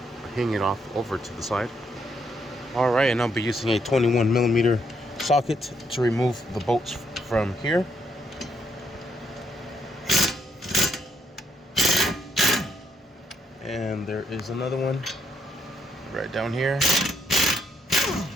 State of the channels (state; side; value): normal; both; correlation 0.74